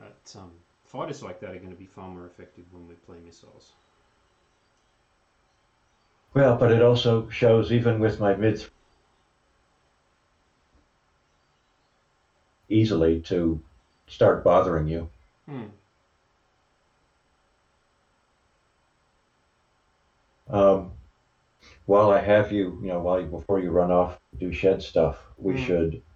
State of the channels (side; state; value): both; identical; correlation 1.00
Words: fighters like that are going to be far more effective when we play missiles. Well, but it also shows, even with my mid easily to start bothering you. While I have you, before you run off do shed stuff, we should